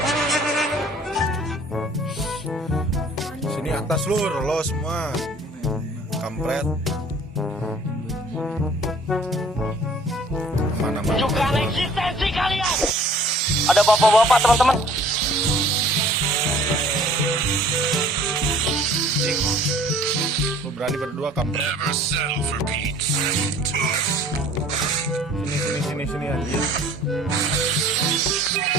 Sini atas lur, lo semua kampret. Mana-mana. Tunjukkan eksistensi kalian. Ada bapak-bapak teman-teman. Lo berani berdua kampret. Sini anjir.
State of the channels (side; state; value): both; normal; correlation 0.51